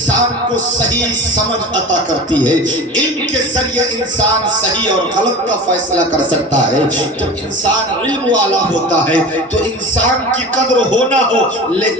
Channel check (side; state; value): both; normal; correlation 0.34